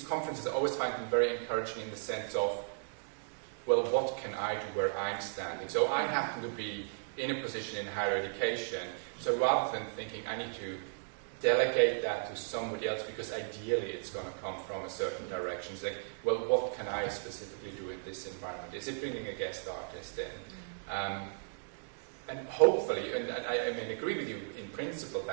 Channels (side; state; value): left; silent; digital silence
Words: conferences I always find them very encouraging in the sense of, well, what can I do where I'm standing? So I happen to be in a position in higher education. So rather than thinking I need to delegate that to somebody else because ideally it's going to come from a certain direction, it's like, well, what can I specifically do in this environment? Is it bringing a guest artist in? And hopefully, and I mean, agree with you in principle